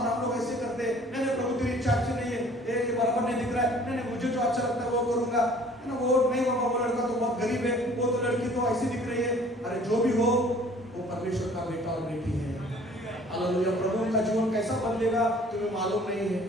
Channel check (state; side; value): normal; both; correlation 0.53